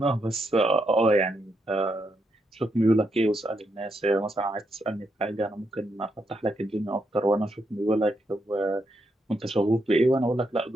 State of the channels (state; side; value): normal; both; correlation 0.80